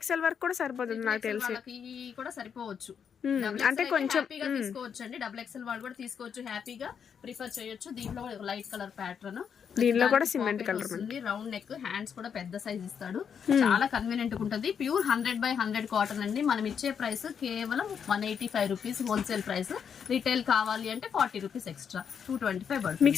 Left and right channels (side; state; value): right; quieter; 7.3 dB